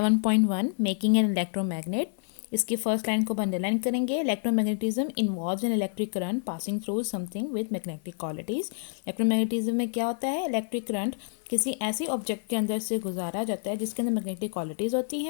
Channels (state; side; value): silent; right; 59 dB below the other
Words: मेकिंग एन इलेक्ट्रोमैग्नेट, इसकी फर्स्ट लाइन को अंडरलाइन करेंगे। Electromagnetism involves an electric current passing through something with magnetic qualities. Electromagnetism में क्या होता है? इलेक्ट्रिक करंट किसी ऐसी ऑब्जेक्ट के अंदर से गुजारा जाता है जिसके अंदर मैग्नेटिक क्वालिटीज़ होती